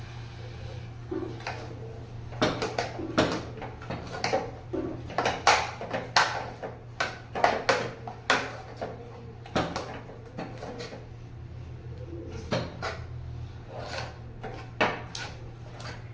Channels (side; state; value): both; identical; correlation 1.00